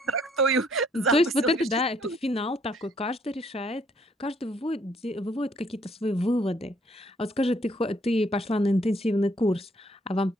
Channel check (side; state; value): both; normal; correlation 0.66